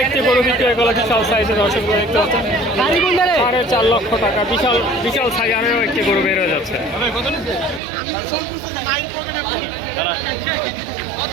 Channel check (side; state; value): left; drops out; at 7.8 s